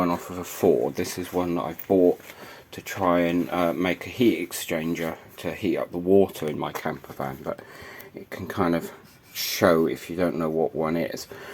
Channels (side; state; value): both; identical; correlation 1.00